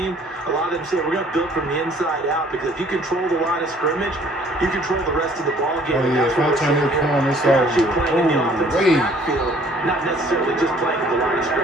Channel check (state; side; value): normal; both; correlation 0.57